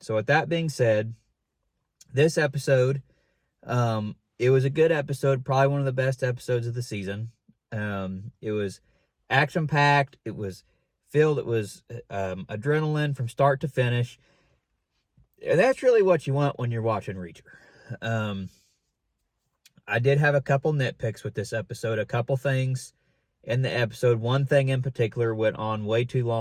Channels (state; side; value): identical; both; correlation 1.00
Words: So with that being said, this episode, it was a good episode, probably one of the best episodes of the season. It was action-packed, it was filled, it was adrenaline from start to finish. And that's really what you want when you're watching Reacher. I did have a couple nitpicks with this episode, a couple things in the episode. One thing in particular went on way too